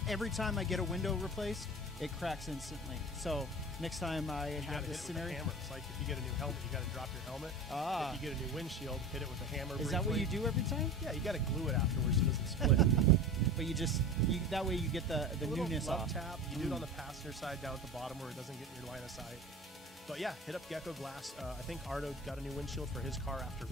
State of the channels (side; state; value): both; normal; correlation 0.33